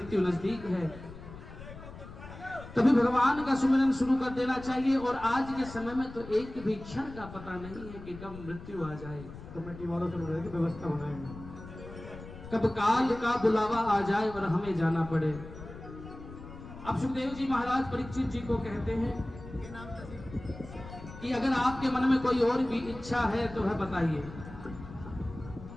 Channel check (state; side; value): noise; left; rumble, 14 dB below the sound